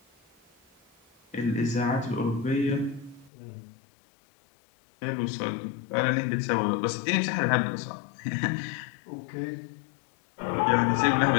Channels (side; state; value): right; drops out; at 3.3 s